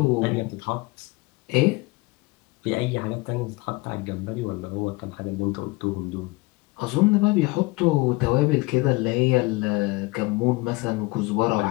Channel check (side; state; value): right; quieter; 23.5 dB